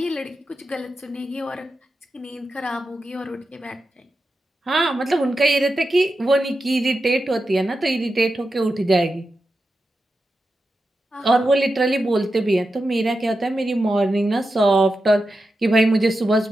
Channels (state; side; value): normal; both; correlation 0.90